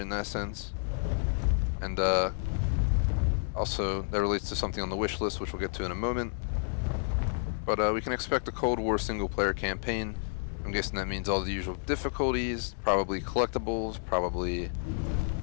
that sense. And also that relates to something on the wish list, which we'll get to in a moment. But we can expect a Cold War single-player campaign. I'm guessing that means all the usual difficulties, probably collectibles, probably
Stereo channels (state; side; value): silent; right; digital silence